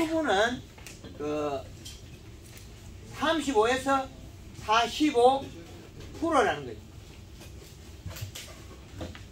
35에서 45%라는 거죠.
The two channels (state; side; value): identical; both; correlation 1.00